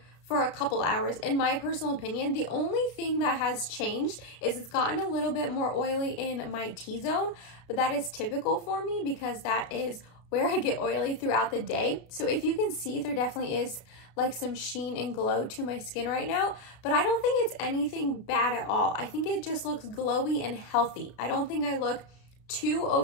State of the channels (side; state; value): right; late; 32 ms